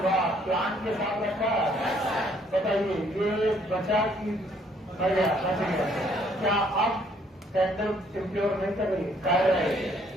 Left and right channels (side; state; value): both; normal; correlation 0.64